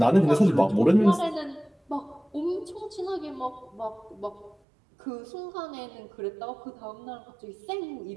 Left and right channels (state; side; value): drops out; left; at 4.5 s